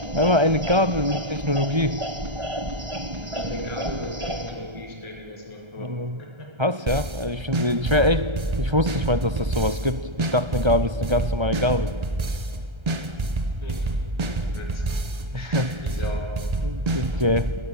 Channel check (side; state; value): left; late; 1.3 ms